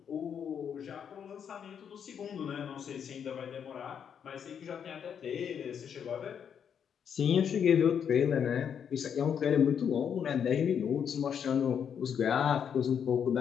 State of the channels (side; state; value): right; quieter; 7.9 dB